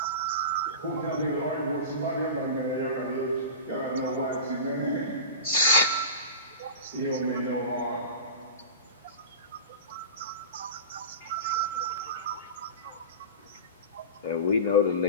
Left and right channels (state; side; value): inverted; both; correlation -0.31